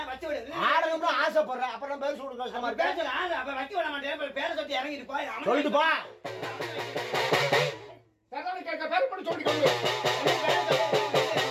ஆசைப்படுறேன் அப்புறம் பேர் சொல்லுங்க சொல்லிட்டு போ.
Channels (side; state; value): both; identical; correlation 1.00